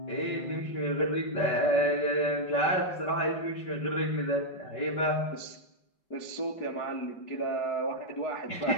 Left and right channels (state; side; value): late; right; 4.8 ms